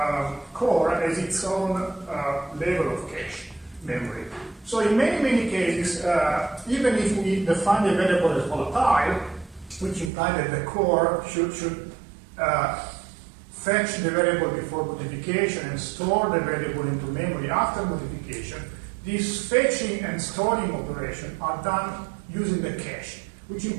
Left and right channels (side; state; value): left; drops out; at 10.1 s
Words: core has its own level of cache memory. So in many cases, even if we define the variable as volatile, which implies that the core should fetch the variable before modification and store the variable into memory after modification, these fetching and storing operations are done using the cache, which